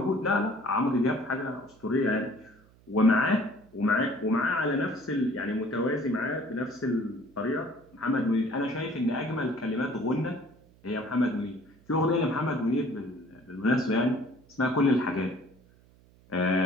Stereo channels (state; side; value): noise; right; hum, 28 dB below the sound